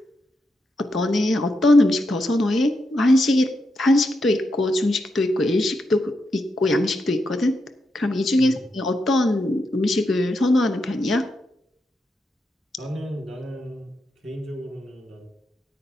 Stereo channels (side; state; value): both; normal; correlation 0.84